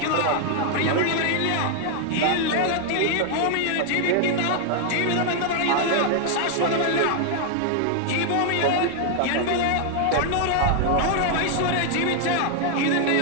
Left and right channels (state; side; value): different; both; correlation 0.00